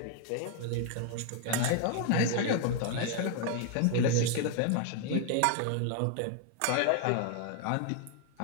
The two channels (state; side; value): different; both; correlation 0.00